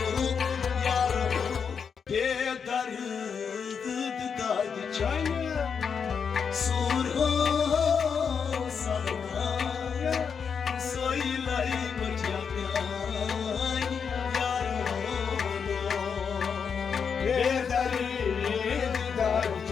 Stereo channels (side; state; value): right; quieter; 6.4 dB